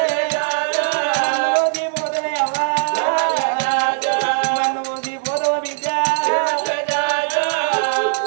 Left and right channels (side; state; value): left; silent; 59 dB below the other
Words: మన్ను పోసిపోతావే అవ్వా మన్ను పోసిపోతావు బిడ్డ